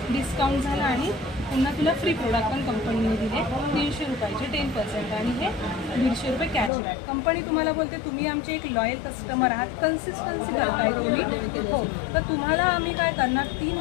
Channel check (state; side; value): drops out; right; at 6.7 s